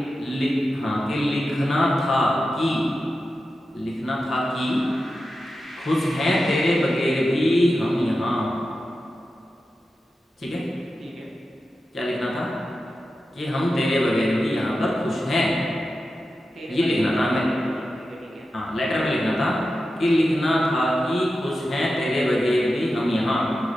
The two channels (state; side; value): normal; both; correlation 0.91